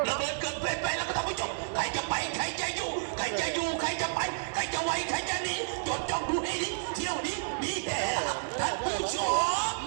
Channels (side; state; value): left; silent; 57 dB below the other